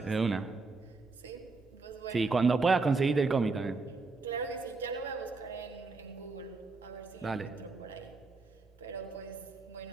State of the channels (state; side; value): quieter; left; 3.9 dB